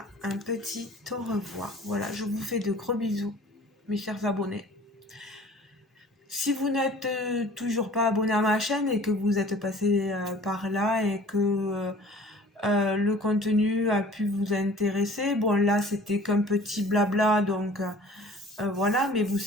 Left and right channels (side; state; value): both; normal; correlation 0.48